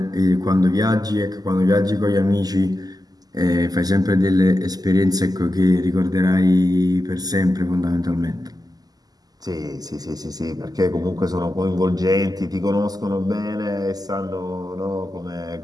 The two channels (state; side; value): late; left; 0.18 ms